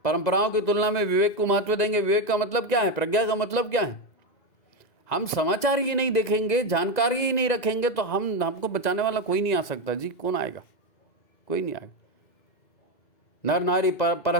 की तुलना में विवेक को महत्व देंगे। विवेक का मतलब क्या है? प्रज्ञा का मतलब क्या है? हम समाचार ही नहीं देखेंगे, जानकारी ही नहीं रखेंगे, तो हमको बचाने वाला कोई नहीं आ सकता जी। कौन आएगा? कोई नहीं आएगा। नर नारी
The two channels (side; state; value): right; late; 2.0 ms